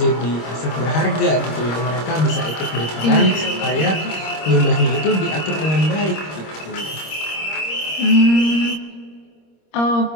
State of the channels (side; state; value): right; late; 26 ms